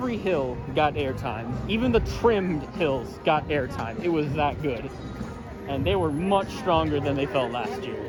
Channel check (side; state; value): both; identical; correlation 1.00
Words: hill got airtime. Even the trimmed hills got airtime. It was that good. And they were much stronger than they felt last